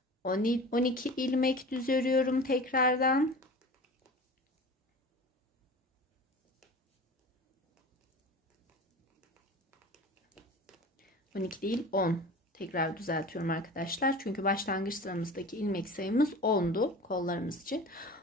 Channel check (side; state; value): both; normal; correlation 0.37